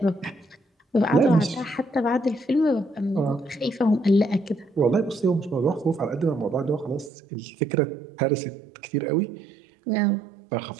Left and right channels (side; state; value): left; drops out; at 7.1 s